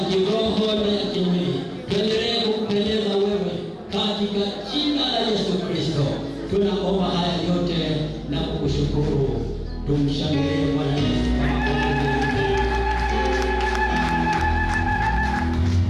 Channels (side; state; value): both; identical; correlation 1.00